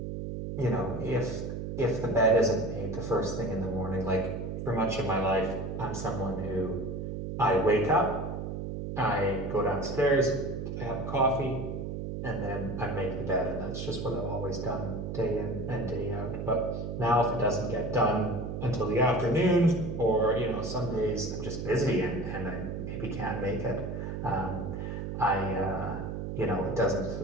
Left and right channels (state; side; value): noise; right; hum, 5 dB below the sound